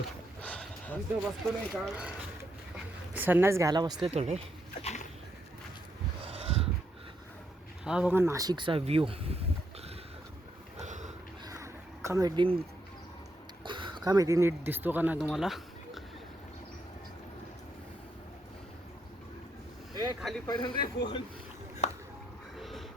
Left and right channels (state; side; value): normal; both; correlation 0.78